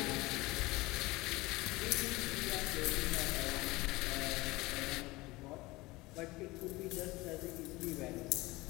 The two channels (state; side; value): quieter; right; 21.2 dB